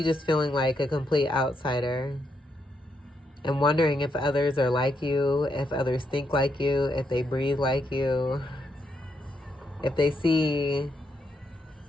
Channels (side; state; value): both; normal; correlation 0.79